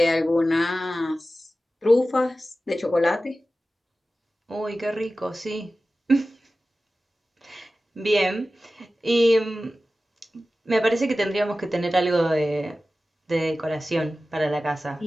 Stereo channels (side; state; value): both; normal; correlation 0.95